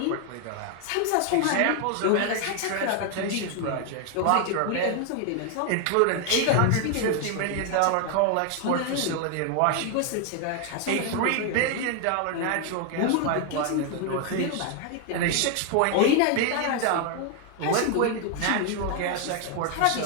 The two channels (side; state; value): both; different; correlation 0.01